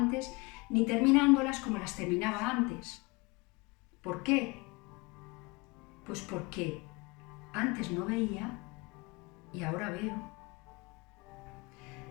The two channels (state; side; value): quieter; right; 25.6 dB